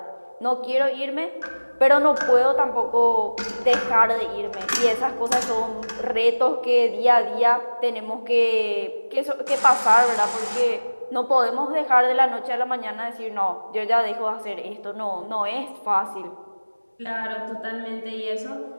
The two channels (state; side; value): inverted; both; correlation -1.00